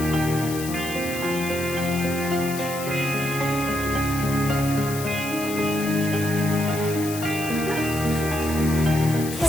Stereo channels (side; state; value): left; noise; hiss, 10 dB below the sound